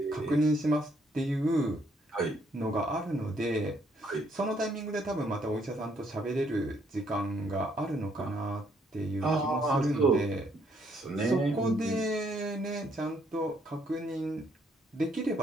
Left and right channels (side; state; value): both; normal; correlation 0.69